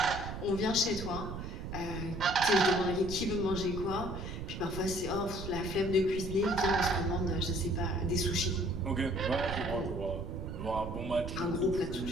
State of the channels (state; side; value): noise; right; rumble, 7 dB below the sound